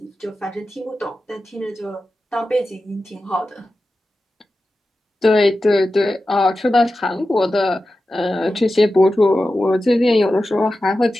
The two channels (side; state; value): both; normal; correlation 0.93